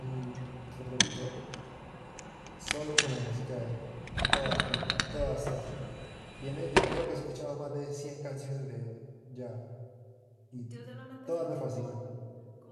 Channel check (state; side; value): identical; both; correlation 1.00